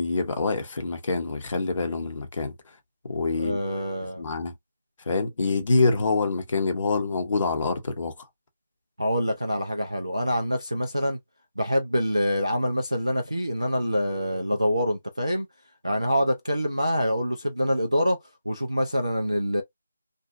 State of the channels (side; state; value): both; inverted; correlation -0.86